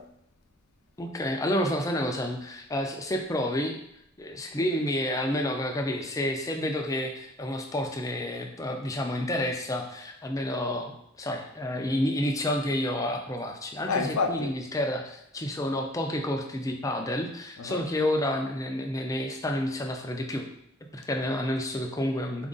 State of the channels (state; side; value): normal; both; correlation 0.51